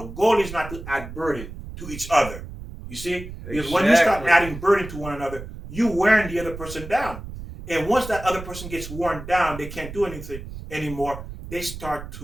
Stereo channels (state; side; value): noise; right; rumble, 11 dB below the sound